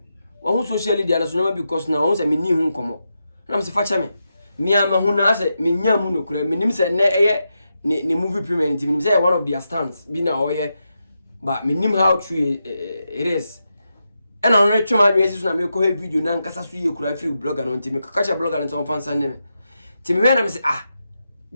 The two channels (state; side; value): inverted; both; correlation -0.87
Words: wa hu social media na so na because na o say me ni hu nkomo na me say fa che me ama hu na say me nya mu no kura me nim say na ne movie premier nti me nim say one of their stunts bi na o ye but me nim how true it is and on reach my message na me ko video na Nkansah so ye kura free blogger no nti me kakacha blogger no so fan san me nti me na me say